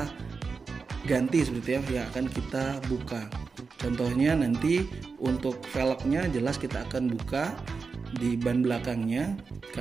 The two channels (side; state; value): left; quieter; 4.8 dB